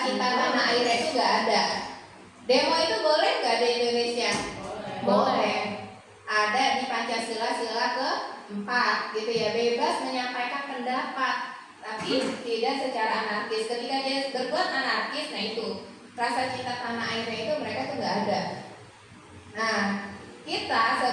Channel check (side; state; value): both; identical; correlation 1.00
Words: cinta tanah air itu nggak ada. Demo itu boleh nggak di Indonesia? Boleh. Ada di Pancasila sila ke-4 gitu ya, bebas menyampaikan pendapat, tapi tidak secara anarkis. Ketika dia berbuat anarkis, nah itu rasa cinta tanah airnya itu mereka tuh nggak ada. Nah, kita